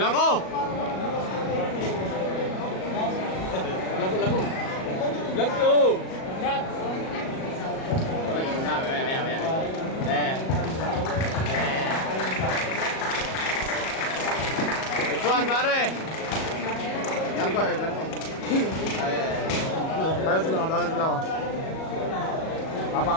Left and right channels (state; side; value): late; right; 37 ms